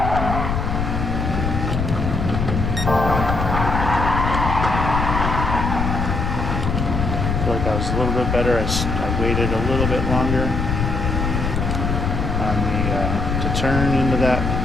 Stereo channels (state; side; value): noise; left; rumble, 1 dB below the sound